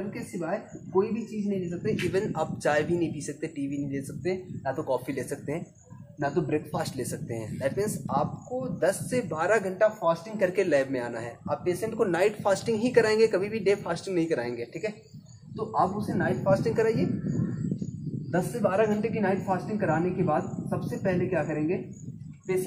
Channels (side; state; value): both; identical; correlation 1.00